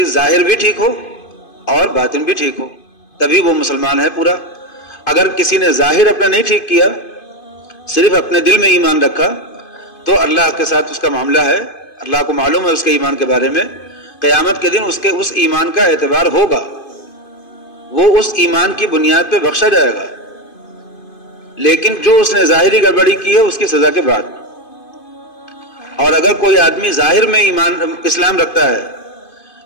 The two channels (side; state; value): right; late; 2.5 ms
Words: ظاہر بھی ٹھیک ہو اور باطن بھی ٹھیک ہو، تبھی وہ مسلمان ہے پورا. اگر کسی نے ظاہر اپنا نہیں ٹھیک کیا، صرف اپنے دل میں ایمان رکھا، تو اللہ کے ساتھ اس کا معاملہ ہے، اللہ کو معلوم ہے اس کے ایمان کے بارے میں. قیامت کے دن اس ایمان کا اعتبار ہوگا، وہ اس ایمان کی بنیاد پہ بخشا جائے گا. لیکن جو اس نے ظاہری گڑبڑی کی ہے اس کی سزا کے بعد. اور اگر کوئی آدمی ظاہر میں اسلام رکھتا ہے